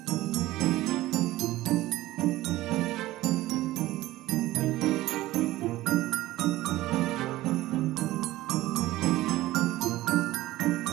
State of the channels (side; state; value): left; quieter; 16.7 dB